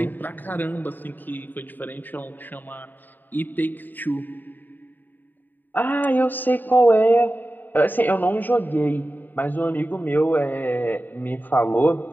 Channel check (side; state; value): right; late; 0.090 ms